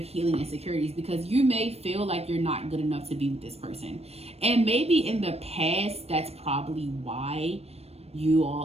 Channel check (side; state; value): left; late; 0.30 ms